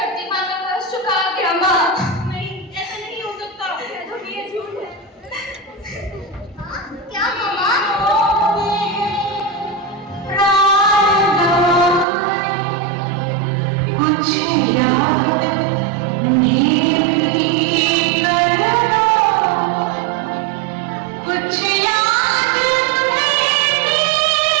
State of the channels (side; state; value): left; drops out; at 12.1 s